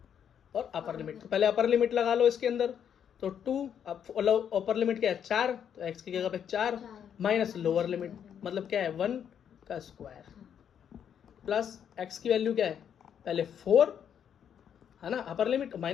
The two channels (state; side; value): quieter; right; 8.6 dB